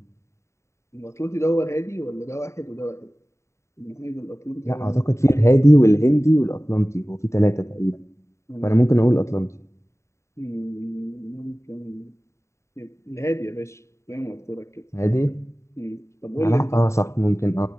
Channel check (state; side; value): late; right; 0.14 ms